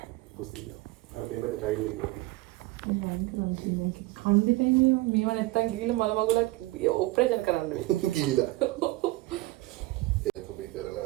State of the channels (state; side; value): quieter; left; 19.5 dB